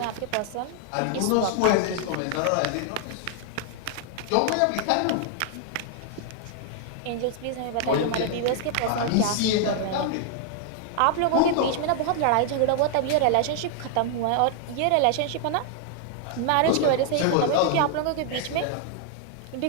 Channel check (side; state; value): both; different; correlation 0.00